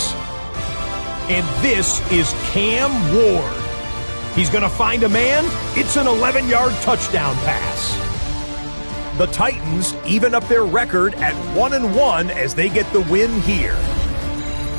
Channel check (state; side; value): inverted; both; correlation -1.00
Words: And this is Cam Ward. He's going to find a man. It's an 11-yard touchdown pass. The Titans even up their record at 1-1 as they get the win here.